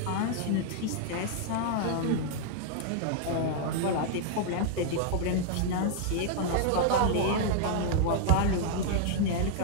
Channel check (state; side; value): different; both; correlation -0.01